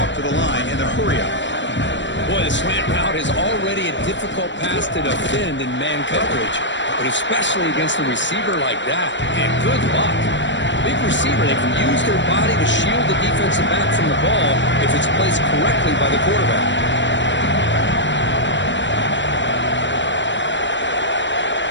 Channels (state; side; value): late; right; 0.53 ms